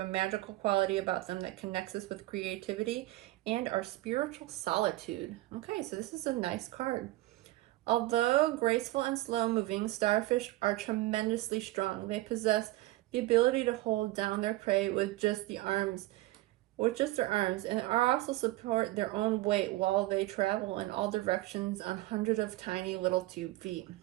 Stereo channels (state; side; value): quieter; left; 18.4 dB